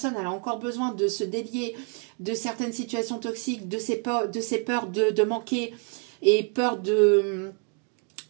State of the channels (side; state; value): left; quieter; 38.3 dB